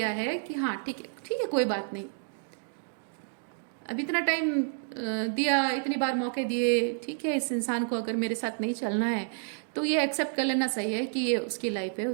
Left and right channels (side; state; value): left; silent; digital silence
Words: है कि हाँ ठीक है कोई बात नहीं, अब इतना टाइम दिया, इतनी बार मौके दिए, ठीक है, इस इंसान को अगर मेरे साथ नहीं चलना है तो ये एक्सेप्ट कर लेना सही है कि ये उसकी लाइफ है,